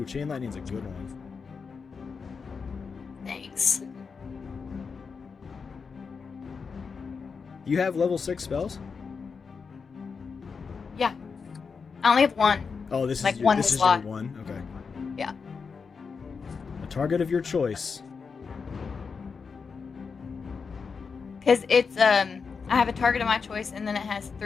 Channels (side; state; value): right; quieter; 5.4 dB